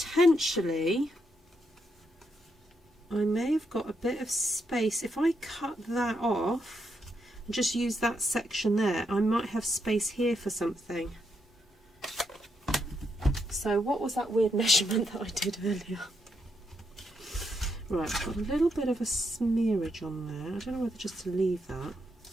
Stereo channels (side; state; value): both; normal; correlation 0.80